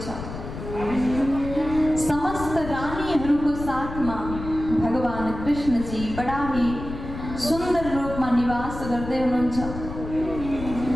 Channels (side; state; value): left; noise; rumble, 9 dB below the sound